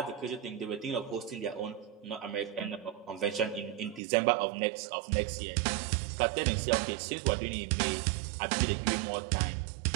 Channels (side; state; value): left; drops out; at 4.0 s